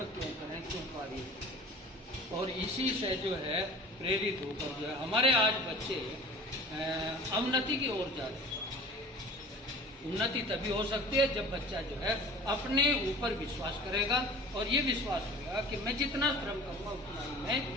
क्यों करें, क्यों कार्य? और इसी से जो है प्रेरित होकर जो है हमारे आज बच्चे अवनति की ओर जा रहे हैं। उन्नति तभी हो सकती है जब बच्चा जो है अपने ऊपर विश्वास करेगा और ये विश्वास होगा कि मैं जितना श्रम करूँगा उतना ही मैं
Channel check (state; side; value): normal; both; correlation 0.42